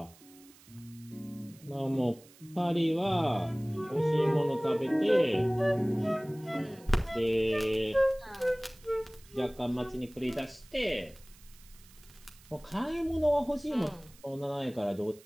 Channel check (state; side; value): noise; right; hiss, 24 dB below the sound